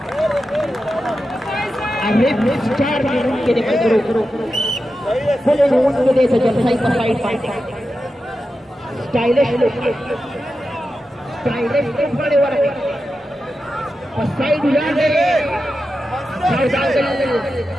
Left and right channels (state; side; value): normal; both; correlation 0.91